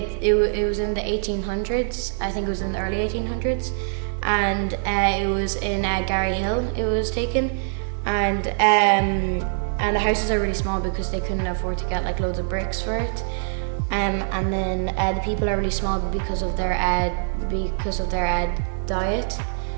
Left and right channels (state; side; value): silent; left; digital silence